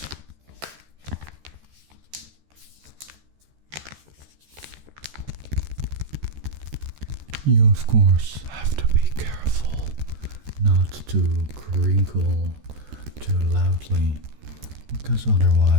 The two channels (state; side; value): late; left; 14 ms